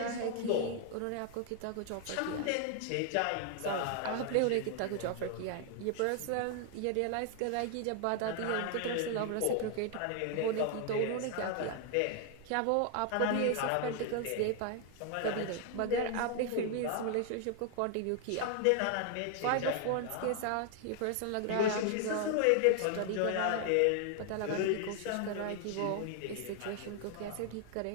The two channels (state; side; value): different; both; correlation 0.00